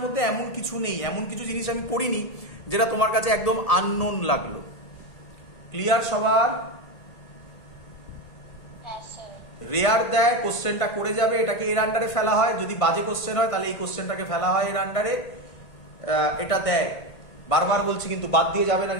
মধ্যে এমন কিছু নেই, এমন কিছু জিনিস আমি পড়িনি যেটা তোমার কাছে একদম আননোন লাগলো। ক্লিয়ার সবার? রেয়ার দেয়, কোশ্চেনটা করে যাবে, এটাকে এর আন্ডারে ফেলা হয়। যদি বাজে কোশ্চেন হয় তাহলে এই কোশ্চেনটাকে ফেলা হয় এর আন্ডারে, এটা দেয়। বারবার বলছি কিন্তু বাদ দিয়ে যাবে না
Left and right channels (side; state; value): right; late; 1.5 ms